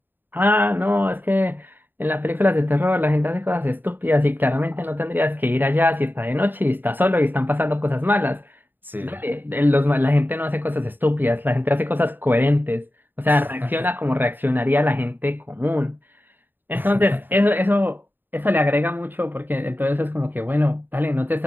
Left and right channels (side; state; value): left; late; 0.093 ms